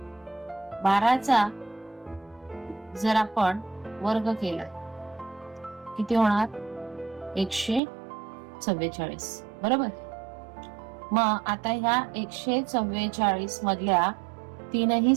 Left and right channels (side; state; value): left; drops out; at 7.8 s